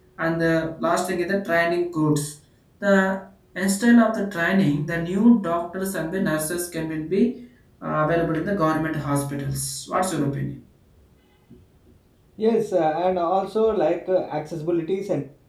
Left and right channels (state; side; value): identical; both; correlation 1.00